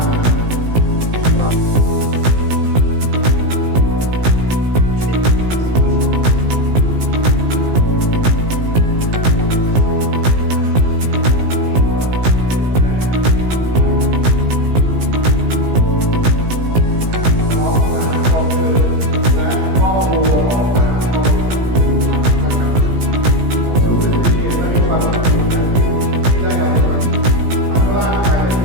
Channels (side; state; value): left; late; 17 ms